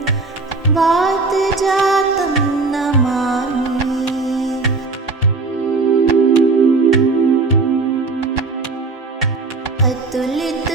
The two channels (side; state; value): left; quieter; 3.8 dB